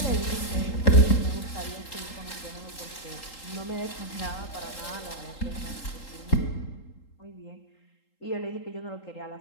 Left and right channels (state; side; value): late; right; 3.8 ms